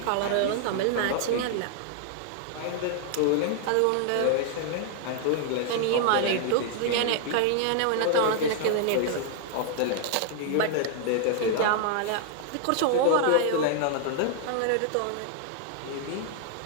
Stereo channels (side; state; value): both; different; correlation 0.00